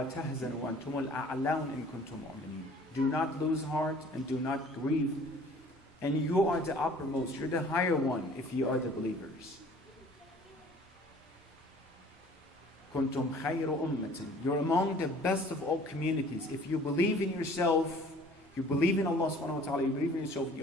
تَحْزَنُوا وَأَنْتُمُ الْأَعْلَوْنَ إِن كُنتُم مُؤْمِنِينَ. Do not lose heart and do not grieve. And you are the uppermost, you're the higher one if you are the believers. كُنتُم خَيْرُ أُمَّةٍ. You're among the best of all communities. If you believe in yourself, you believe in Allah subhanahu wa ta'ala, you believe in yourself,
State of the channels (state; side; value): normal; both; correlation 0.51